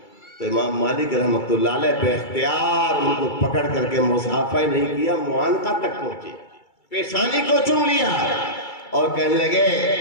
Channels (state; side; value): late; right; 2.3 ms